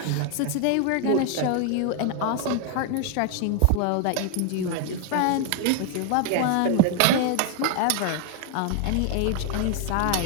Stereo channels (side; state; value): both; different; correlation 0.00